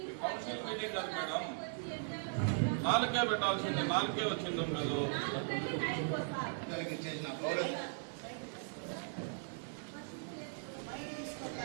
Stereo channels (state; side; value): silent; left; digital silence